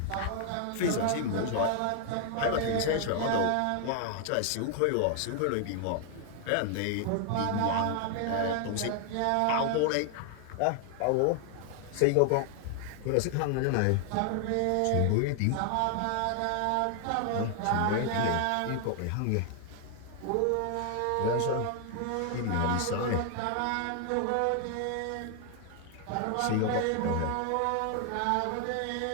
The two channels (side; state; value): both; different; correlation 0.00